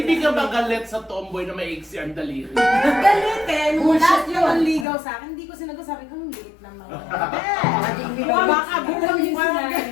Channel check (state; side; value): drops out; right; at 4.9 s